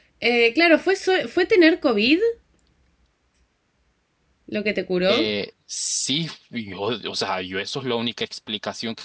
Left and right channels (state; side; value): identical; both; correlation 1.00